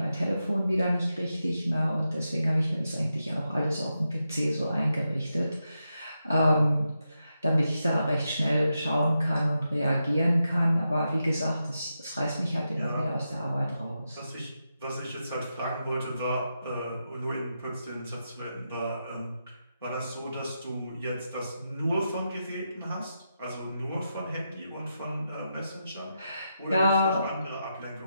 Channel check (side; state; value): both; inverted; correlation -0.87